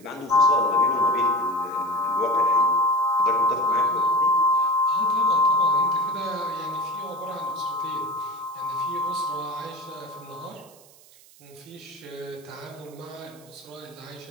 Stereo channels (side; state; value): right; noise; hiss, 25 dB below the sound